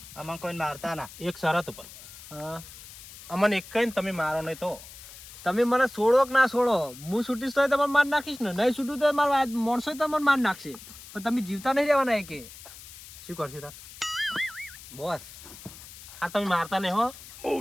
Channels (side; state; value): left; noise; hiss, 16 dB below the sound